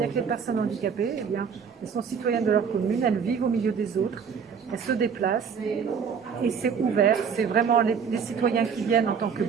que les personnes handicapées, eh bien, elles sont citoyennes de leur commune, elles vivent au milieu des autres, elles se déplacent, et c'est ouvert. C'est vraiment les citoyens qui viennent en tant que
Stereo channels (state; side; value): quieter; left; 6.6 dB